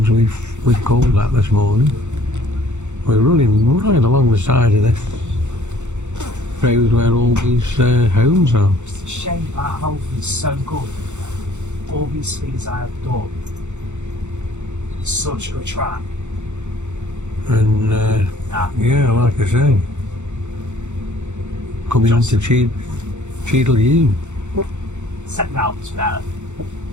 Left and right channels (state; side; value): late; left; 0.84 ms